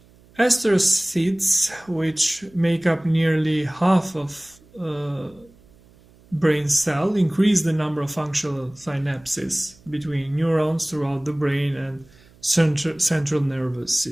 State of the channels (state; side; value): noise; right; hum, 28 dB below the sound